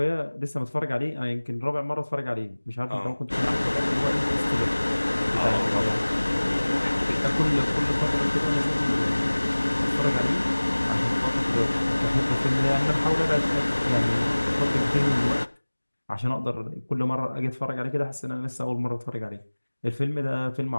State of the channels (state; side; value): inverted; both; correlation -1.00